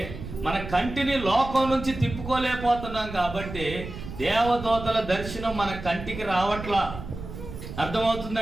మన కంటిని లోకం నుంచి తిప్పుకోలేకపోతున్నాం. కాబట్టి దేవదూతల దర్శనం మన కంటికి రావట్లా.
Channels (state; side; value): noise; right; rumble, 10 dB below the sound